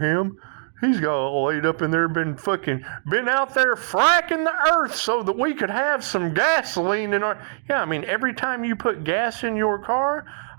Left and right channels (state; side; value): silent; left; digital silence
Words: him. He's got laid up in there, been out there fracking the earth so that we could have some gasoline in our... Yeah, I mean, every time you put gas in your car,